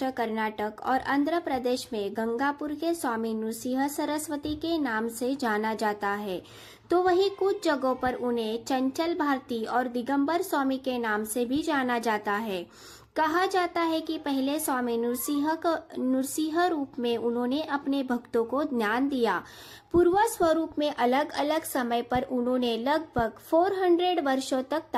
कर्नाटक और आंध्र प्रदेश में गंगापुर के स्वामी नृसिंह सरस्वती के नाम से जाना जाता है, तो वहीं कुछ जगहों पर उन्हें चंचल भारती और दिगंबर स्वामी के नाम से भी जाना जाता है। कहा जाता है कि पहले स्वामी नृसिंह रूप में उन्होंने अपने भक्तों को ज्ञान दिया। पूर्व स्वरूप में अलग अलग समय पर उन्होंने लगभग 400 वर्षों तक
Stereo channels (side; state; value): both; identical; correlation 1.00